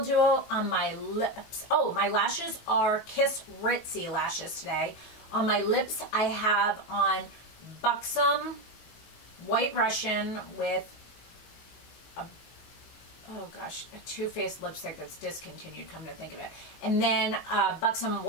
Duo. On my lips, oh, my lashes are Kiss Ritzy lashes today. On my lips, I have on Buxom White Russian with a, oh gosh, a Too Faced lipstick that's discontinued, come to think of it. And then Buxom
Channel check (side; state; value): right; late; 19 ms